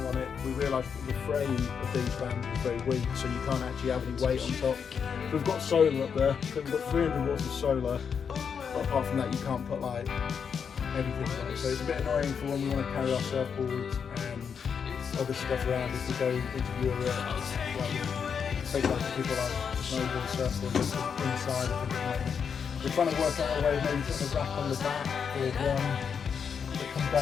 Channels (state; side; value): quieter; right; 6.7 dB